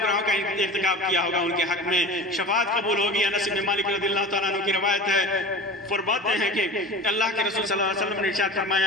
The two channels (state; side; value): normal; both; correlation 0.35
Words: کا ارتکاب کیا ہوگا، ان کے حق میں شفاعت قبول ہوگی۔ انس بن مالک رضی اللہ تعالیٰ عنہ کی روایت ہے، فرماتے ہیں کہ اللہ کے رسول صلی اللہ علیہ وسلم نے ارشاد